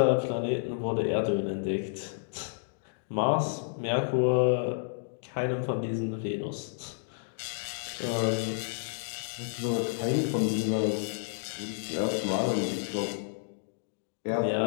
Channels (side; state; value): right; silent; digital silence